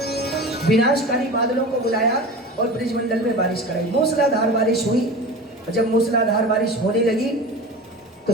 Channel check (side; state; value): both; normal; correlation 0.33